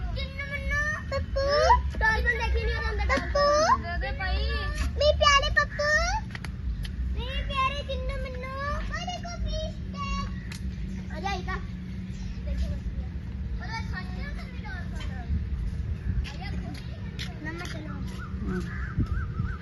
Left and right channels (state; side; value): identical; both; correlation 1.00